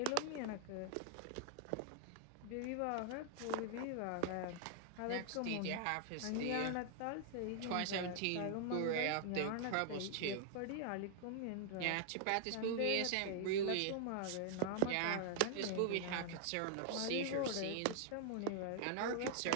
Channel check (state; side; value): different; both; correlation 0.00